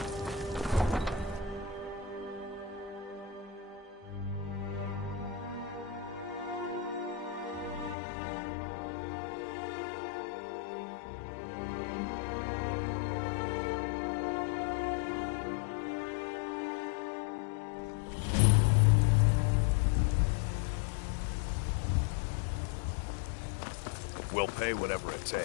We'll pay whatever it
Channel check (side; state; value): right; drops out; at 8.0 s